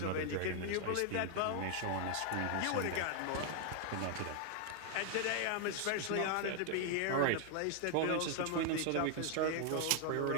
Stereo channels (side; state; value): both; different; correlation 0.00